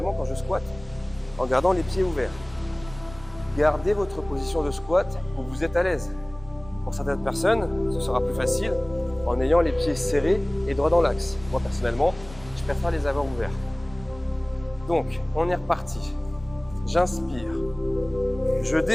quand je squatte, en gardant les pieds ouverts. Gardez votre position de squat où vous êtes à l'aise. Pour certaines personnes, ce sera plus facile en ayant les pieds serrés et droits dans l'axe. Moi personnellement, je préfère les avoir ouverts. Donc, on est reparti. J'inspire. Je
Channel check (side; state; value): right; noise; rumble, 19 dB below the sound